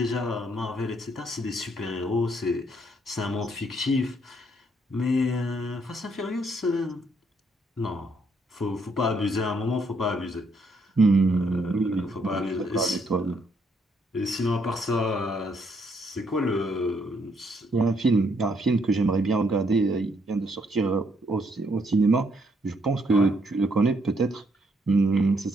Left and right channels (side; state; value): both; normal; correlation 0.72